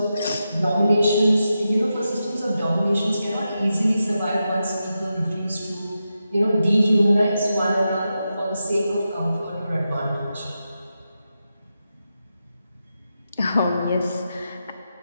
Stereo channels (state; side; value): inverted; both; correlation -0.88